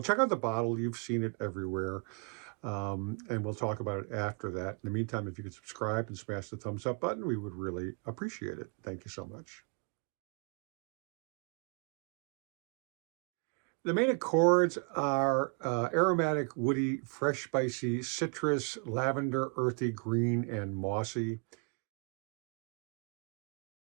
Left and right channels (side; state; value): left; quieter; 33.7 dB